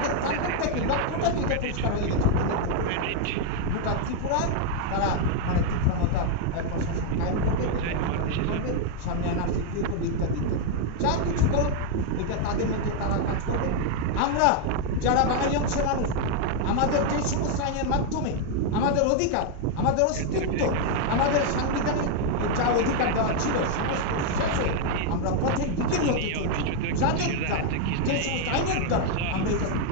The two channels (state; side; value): different; both; correlation 0.00